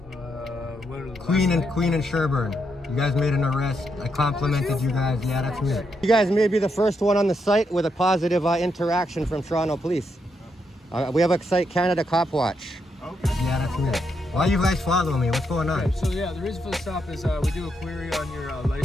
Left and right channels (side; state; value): both; normal; correlation 0.80